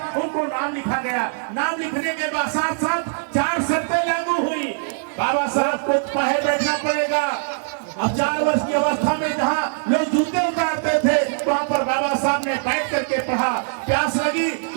उनको नाम लिखा गया। नाम लिखने के बाद साथ साथ 4 शर्तें लागू हुई। बाबा साहब को बाहर बैठना पड़ेगा। अब 4 वर्ष की अवस्था में जहाँ लोग जूते उतारते थे वहाँ पर बाबा साहब ने बैठ करके पढ़ा। प्यास लगी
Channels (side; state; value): left; silent; 64 dB below the other